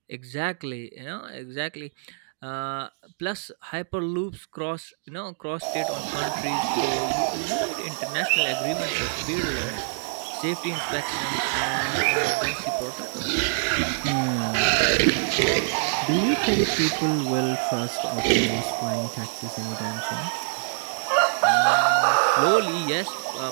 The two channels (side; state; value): left; silent; digital silence